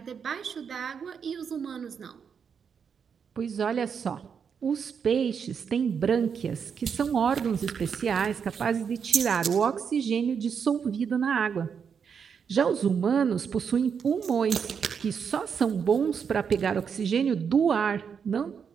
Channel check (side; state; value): left; quieter; 6.8 dB